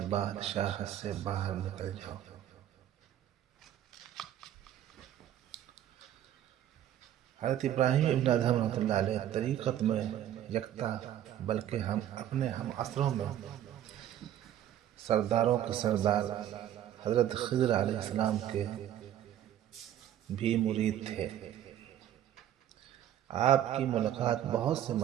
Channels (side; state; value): left; quieter; 11.4 dB